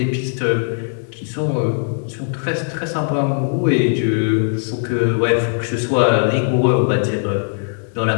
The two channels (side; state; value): right; silent; digital silence